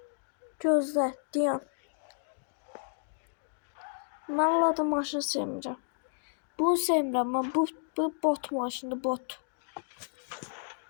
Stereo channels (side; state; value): right; silent; digital silence